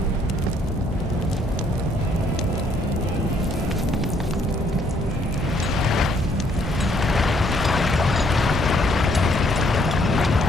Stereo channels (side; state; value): both; normal; correlation 0.68